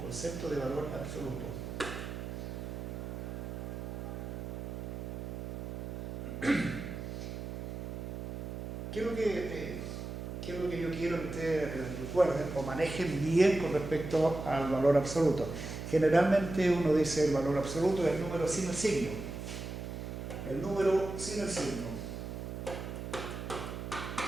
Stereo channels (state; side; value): noise; right; hum, 6 dB below the sound